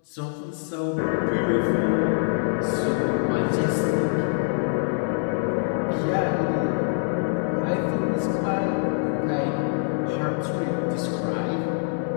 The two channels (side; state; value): right; silent; digital silence